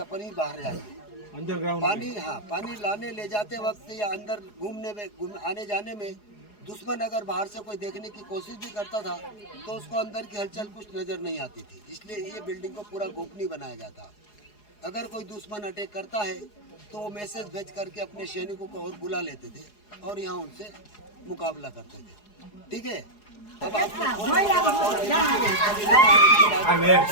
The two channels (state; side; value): late; right; 4.8 ms